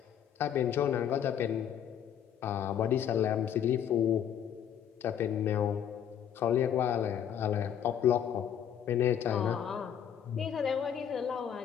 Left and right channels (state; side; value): quieter; right; 9.1 dB